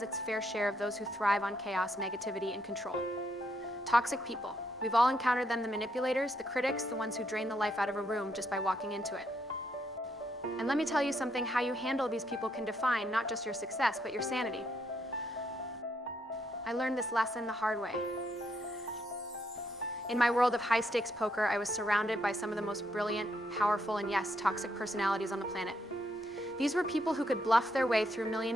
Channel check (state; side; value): normal; both; correlation 0.75